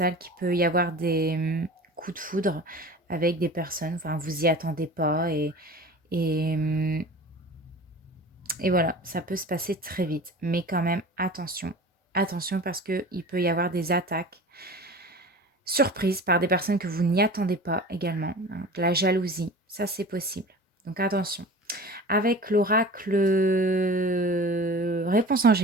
qu'il peut y avoir des, coups de foudre avec des personnes, enfin vous y attendez pas et mmh et voilà, ça peut se passer très vite. Mais quand même attention, attention parce qu'il peut y avoir des attaques surprise par des personnes que vous n'y attendez pas également, hein, de la jalousie, ça c'est possible. Donc attention. Avec l'oracle réponse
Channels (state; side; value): normal; both; correlation 0.38